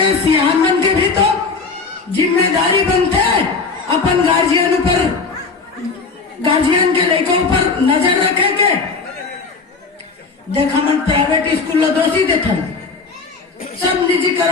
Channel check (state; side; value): quieter; right; 4.5 dB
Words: सियान बन के भी तो जिम्मेदारी बनते अपन गार्जियन पर, गार्जियन के लड़कों पर नजर रखे के। देखा मन प्राइवेट स्कूल दोषी देखा सब